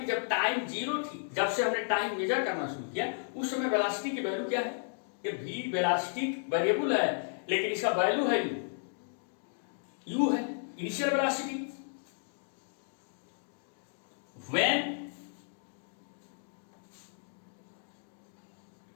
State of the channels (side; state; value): right; silent; digital silence